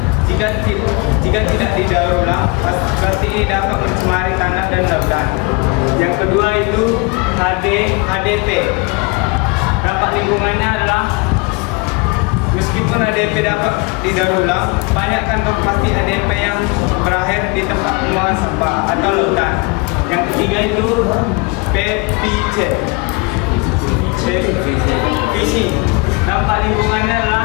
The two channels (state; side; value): quieter; right; 28.2 dB